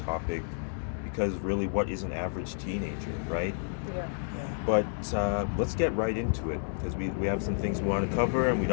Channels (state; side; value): silent; right; digital silence